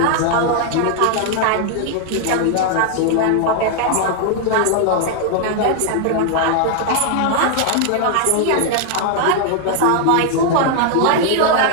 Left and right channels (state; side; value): different; both; correlation 0.00